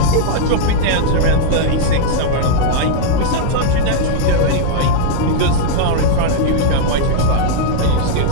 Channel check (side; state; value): both; different; correlation -0.01